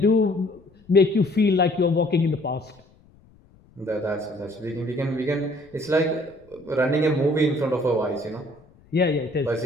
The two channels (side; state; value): left; noise; rumble, 29 dB below the sound